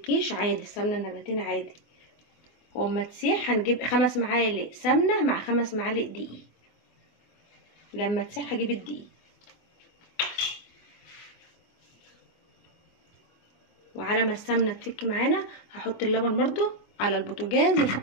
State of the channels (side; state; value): right; late; 24 ms